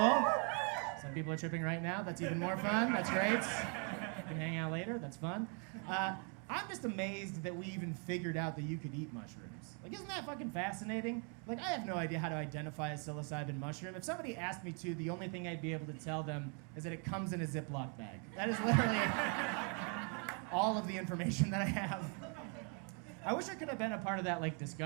Some people are tripping right now. That's even more fun. That's great. We can hang out later. That's fun. I'm just amazed that we even figured out that you could eat mushrooms. Like, isn't that fucking fascinating? Like, I have no idea how to identify a psilocybin mushroom. If somebody asked me to, the only thing I'd be able to tell them is that it comes in a Ziploc bag. That is literally all of the information that I have. I wish I could have been a part of that, like,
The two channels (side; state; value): left; quieter; 37.8 dB